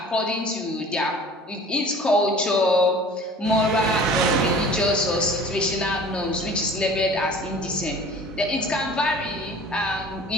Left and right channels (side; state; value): both; normal; correlation 0.45